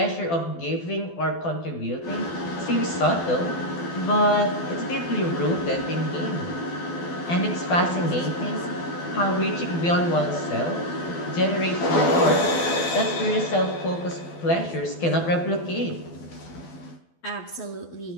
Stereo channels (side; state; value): right; late; 12 ms